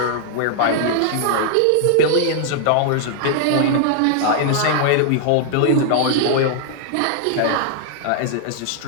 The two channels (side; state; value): both; different; correlation -0.01